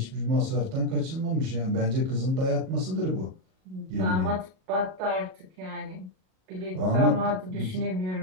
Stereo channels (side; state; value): left; late; 38 ms